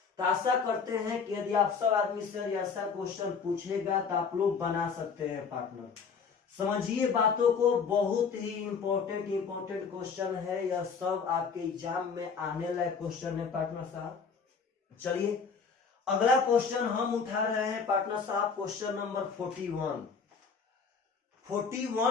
तो आशा करते हैं कि यदि आप सब आदमी से ऐसा क्वेश्चन पूछेगा तो आप लोग बना सकते हैं पार्टनर। समझिए बातों को, बहुत ही इंपॉर्टेंट क्वेश्चन है, यह सब आपके एग्जाम में आने लायक क्वेश्चन है पार्टनर साहब। चलिए अगला क्वेश्चन हम उठा रहे हैं पार्टनर साहब, क्वेश्चन नंबर 41।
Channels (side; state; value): right; quieter; 5.6 dB